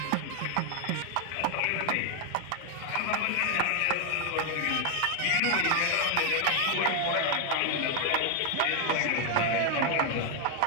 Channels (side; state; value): both; different; correlation 0.00